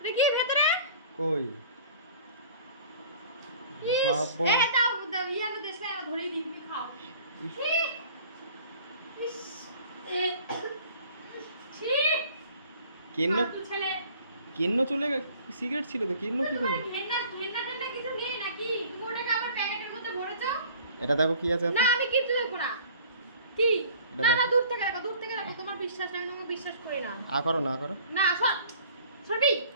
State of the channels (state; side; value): inverted; both; correlation -0.49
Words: কি ভেতরে? কই ইস, বাবা, এ দাও দাও, ইয়ানো দেশে আমি ধরেই দিই, তুমি খাও। ছি! ইস, এ ছি! কেন্ন ফালতু ছেলে। কেন্ন চলে সিগারেট ছিল তো, কেন্ন কি করে? ঘেন্না ঘেন্না টেন্না কিছু নেই নাকি? তুমি ওটাকে আবার প্যাকেটের মধ্যে ভরেছো? এটা দেখো কি আছে না, আমি কিচ্ছু দেখবো না। কি? এটা না না, দেখো। দূর থেকে রাখো, দূর থেকে রাখো। তোমার বিশ্বাস নেই, আমি তোমাকে বিশ্বাস করি না। আ করো না, আ করো। না, সর সরবি।